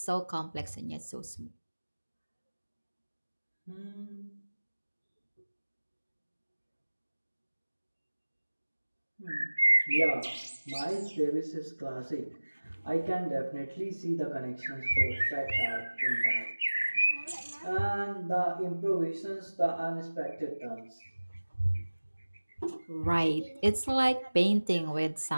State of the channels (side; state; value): both; inverted; correlation -1.00